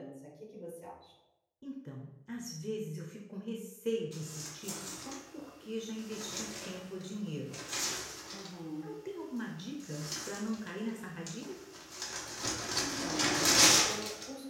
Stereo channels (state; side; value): identical; both; correlation 1.00